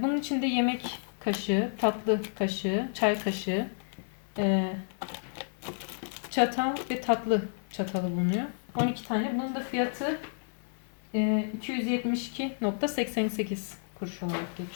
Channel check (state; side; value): silent; right; digital silence